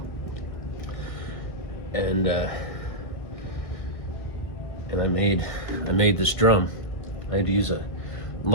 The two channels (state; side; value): late; right; 2.0 ms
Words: And I made this drum. I had to use a